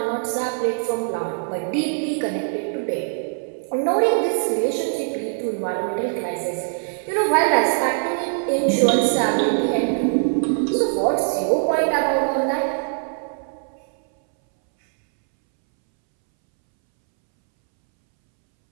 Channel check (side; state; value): left; silent; 64 dB below the other